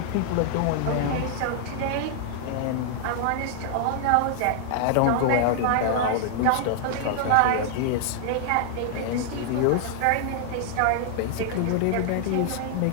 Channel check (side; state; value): both; different; correlation -0.01